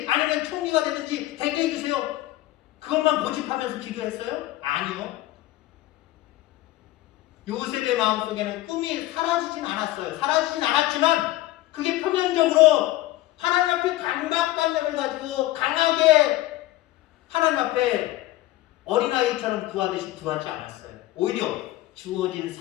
아니면 총리가 되든지 되게 해주세요. 그것만 고집하면서 기도했어요? 아니요. 요셉의 마음속에는 꿈이 사라지진 않았어요. 사라지진 않았지만 그게 표면적으로 하나님 앞에 강박관념을 가지고 강하게 하나님 앞에 어린아이처럼 구하듯이 구하지 않았어요. 오히려 주어진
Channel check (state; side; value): quieter; right; 16.4 dB